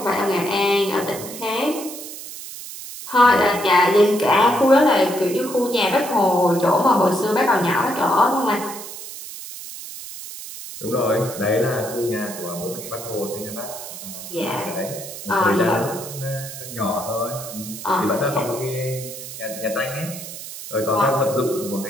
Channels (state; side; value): noise; right; hiss, 11 dB below the sound